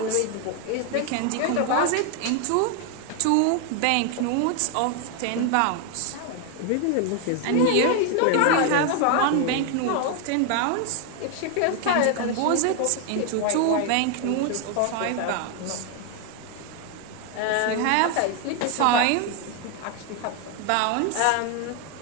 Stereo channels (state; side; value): different; both; correlation 0.01